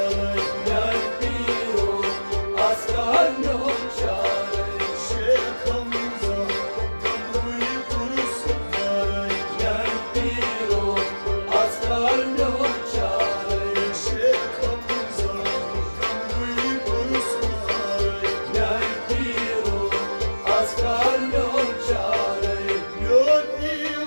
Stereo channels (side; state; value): both; inverted; correlation -1.00